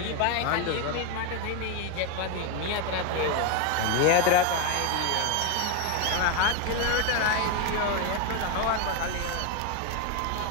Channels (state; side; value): different; both; correlation 0.02